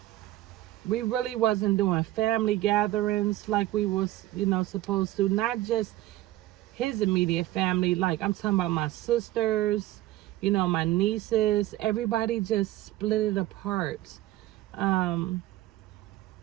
we really wasn't doing family gatherings like we was, you know, supposed to. Not just his immediate family. Like I'm talking about my sisters, you know, my nieces. Everybody just split it apart. Um,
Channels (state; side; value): quieter; left; 15.7 dB